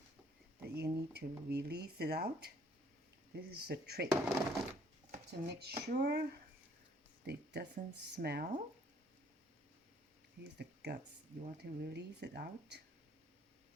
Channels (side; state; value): both; normal; correlation 0.62